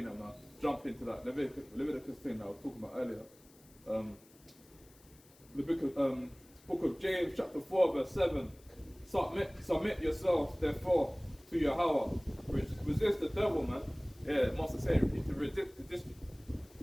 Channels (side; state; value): left; noise; hiss, 26 dB below the sound